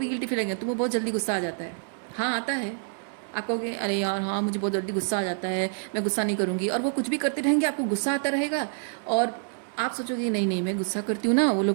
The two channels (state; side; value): silent; left; digital silence